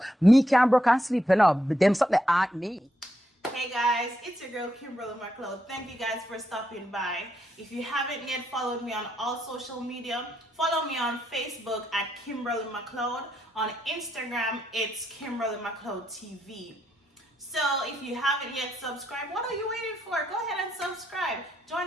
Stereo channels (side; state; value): both; normal; correlation 0.80